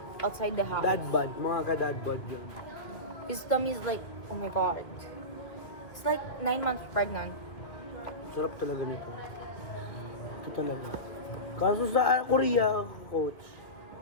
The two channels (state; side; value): late; right; 2.4 ms